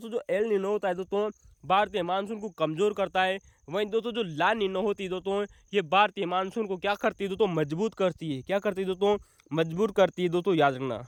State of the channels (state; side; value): identical; both; correlation 1.00